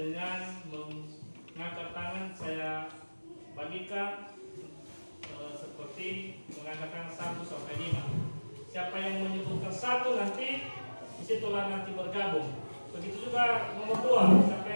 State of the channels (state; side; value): inverted; both; correlation -1.00